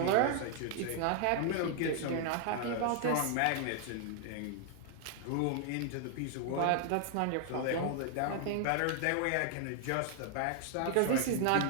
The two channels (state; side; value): different; both; correlation 0.00